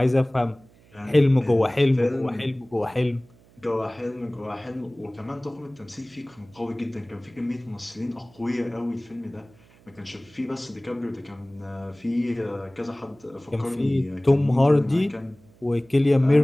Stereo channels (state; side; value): noise; right; hum, 28 dB below the sound